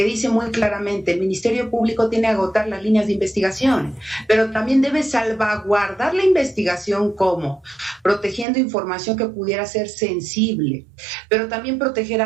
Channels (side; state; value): left; drops out; at 8.5 s